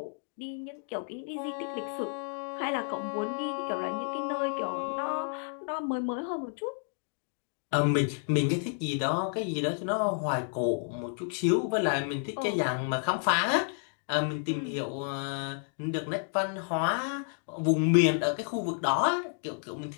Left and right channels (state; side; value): silent; right; 57 dB below the other